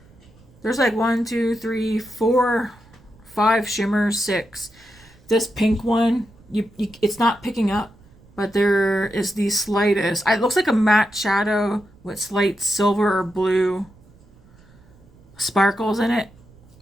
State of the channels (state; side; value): noise; right; rumble, 27 dB below the sound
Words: There's like 1, 2, 3, 4, 5 shimmers, 6. This pink one, it's not picking up. but there is the slightest. It looks like a matte shadow with slight silver or blue sparkles in it.